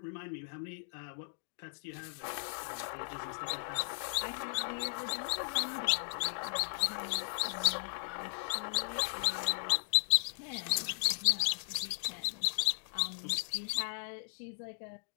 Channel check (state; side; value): silent; right; digital silence